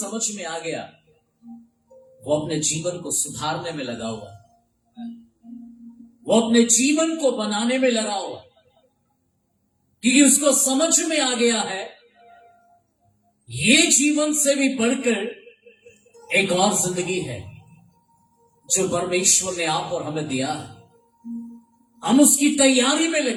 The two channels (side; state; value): both; identical; correlation 1.00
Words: में आ गया, वो अपने जीवन को सुधारने में लगा हुआ, वो अपने जीवन को बनाने में लगा हुआ, क्योंकि उसको समझ में आ गया है ये जीवन से भी बढ़कर एक और जिंदगी है जो परमेश्वर ने आप और हमें दिया है। हम उसकी तैयारी में